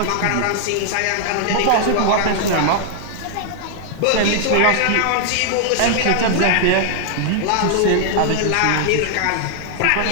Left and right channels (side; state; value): both; different; correlation -0.01